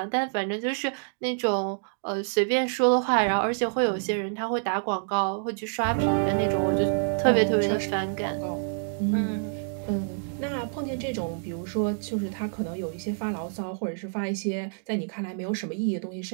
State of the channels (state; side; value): silent; left; digital silence